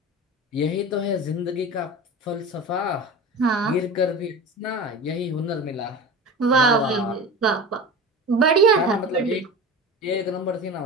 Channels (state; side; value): normal; both; correlation 0.31